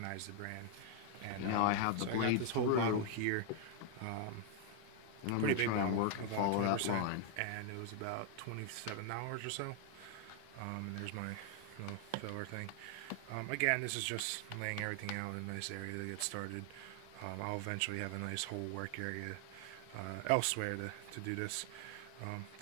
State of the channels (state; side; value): different; both; correlation 0.00